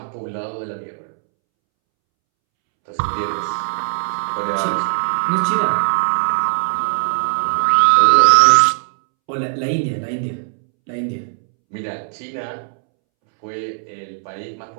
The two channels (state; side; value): silent; left; 67 dB below the other